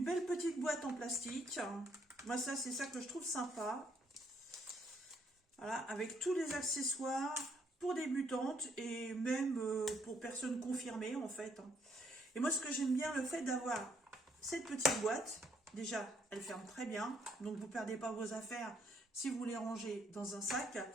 belle petite boîte en plastique. Moi, ça, c'est ça que je trouve sympa. Voilà, avec tous les accessoires pour débutantes et même pour personnes confirmées, en fait. Et moi, ce que j'aime bien, le fait d'avoir cette petite boîte, déjà, elle ferme très bien. Donc, vous ne perdez pas vos affaires si vous les rangez dans un sac.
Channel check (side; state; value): both; normal; correlation 0.69